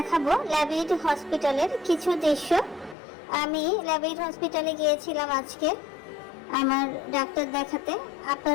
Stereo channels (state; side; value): drops out; right; at 3.0 s